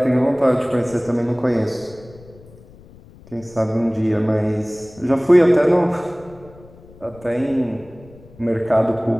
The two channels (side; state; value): left; noise; rumble, 23 dB below the sound